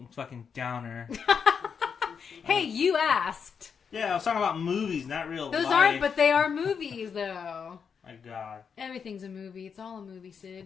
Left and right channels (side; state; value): right; quieter; 6.5 dB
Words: fucking downer. Hey, you asked. Yeah, I was talking about movies, not real life. Those aren't, but they are movies, though. My God. Everything's a movie. It's all a movie,